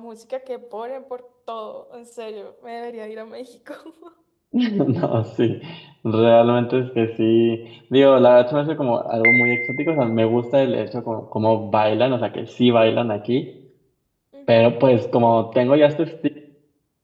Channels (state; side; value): identical; both; correlation 1.00